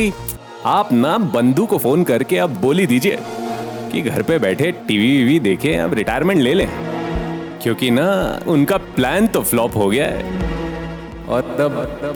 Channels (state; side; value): identical; both; correlation 1.00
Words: आप ना बंधु को फोन करके अब बोल ही दीजिए कि घर पे बैठे टीवी वीवी देखे, अब रिटायरमेंट ले लें, क्योंकि ना उनका प्लान तो फ्लॉप हो गया है और तब